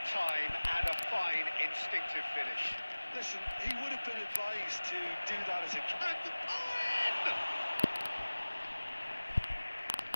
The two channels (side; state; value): both; inverted; correlation -1.00